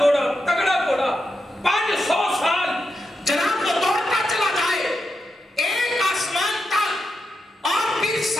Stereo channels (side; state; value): both; normal; correlation 0.86